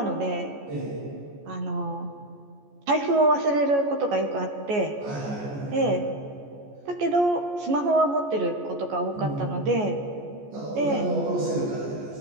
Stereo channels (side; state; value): left; late; 14 ms